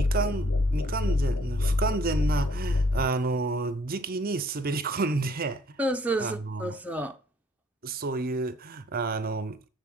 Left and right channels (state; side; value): normal; both; correlation 0.62